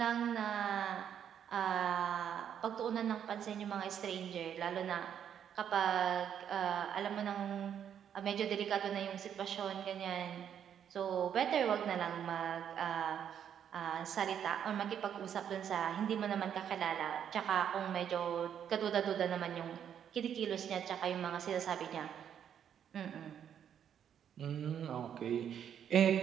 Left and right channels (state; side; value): quieter; left; 8.9 dB